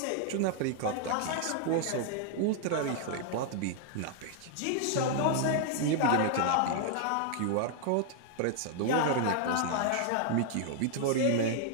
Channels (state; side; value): different; both; correlation 0.00